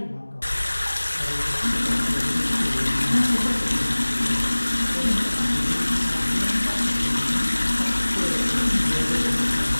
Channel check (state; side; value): inverted; both; correlation -1.00